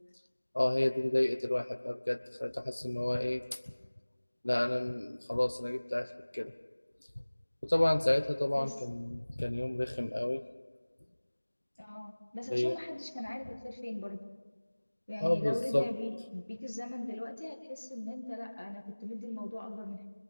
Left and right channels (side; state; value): both; inverted; correlation -1.00